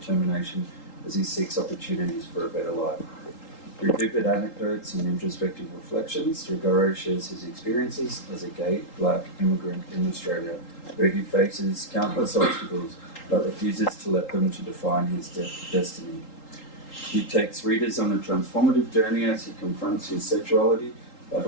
as he seeks opportunities for a better life. Through vivid anecdotes and introspective reflections, Rugare shares his experiences as a gay, black immigrant in Australia, where he faces countless obstacles but refuses to let them to define his destiny. He takes readers on a transformative journey as he confronts his sexuality,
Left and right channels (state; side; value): late; right; 3.8 ms